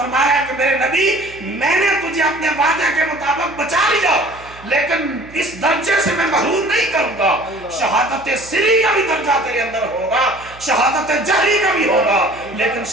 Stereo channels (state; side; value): noise; right; hum, 21 dB below the sound